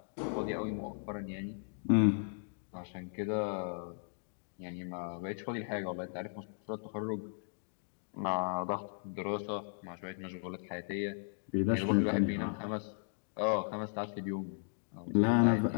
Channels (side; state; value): right; silent; digital silence